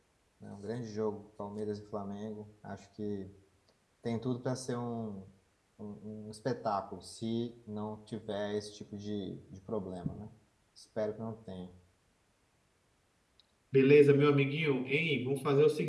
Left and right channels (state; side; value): identical; both; correlation 1.00